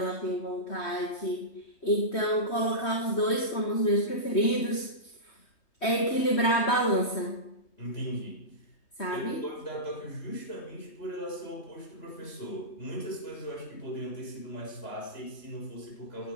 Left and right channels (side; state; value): right; late; 3.2 ms